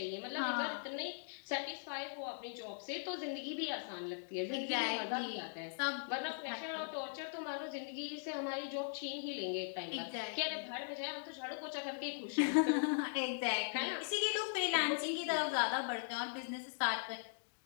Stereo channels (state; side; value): silent; right; digital silence